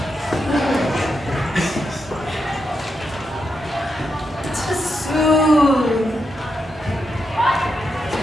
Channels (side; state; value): both; normal; correlation 0.84